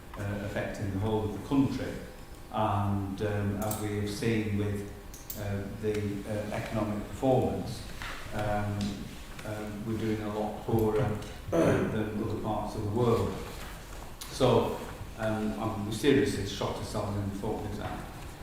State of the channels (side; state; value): both; identical; correlation 1.00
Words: affecting the whole of the country, and as we have seen with the economic performance, we're doing a lot poorer than other parts of the world. So we seriously shot ourselves in the foot with that.